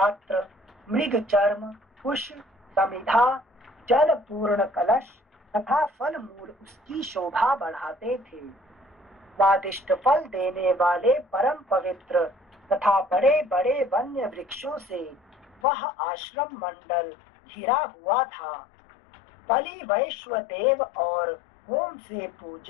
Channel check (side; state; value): right; drops out; at 15.6 s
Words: मृग चर्म, कुश, समिधा, जल पूर्ण कलश तथा फल मूल उसकी शोभा बढ़ाते थे। स्वादिष्ट फल देने वाले परम पवित्र तथा बड़े बड़े वन्य वृक्षों से वह आश्रम मंडल घिरा हुआ था। बलि वैश्वदेव और होम से